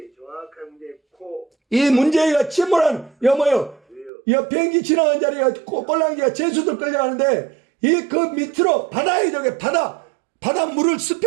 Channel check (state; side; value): drops out; left; at 4.1 s